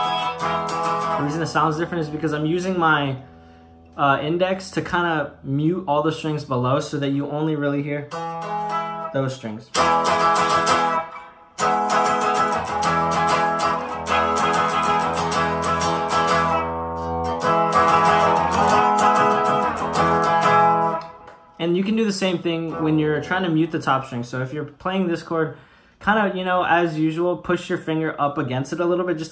sounds different is because I'm using my index to kind of mute all the strings below so that you only really hear those strings. And you can do the same thing when you're trying to mute the top string. So if you're playing this chord, kind of, you know, as usual, push your finger up against it a little bit,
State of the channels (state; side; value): identical; both; correlation 1.00